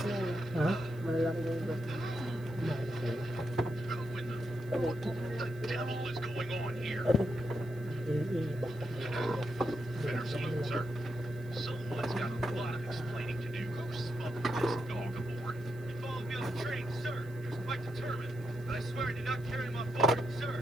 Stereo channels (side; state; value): right; noise; hiss, 26 dB below the sound